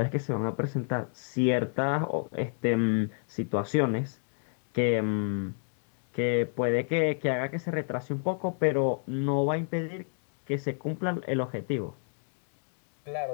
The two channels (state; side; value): silent; right; 58 dB below the other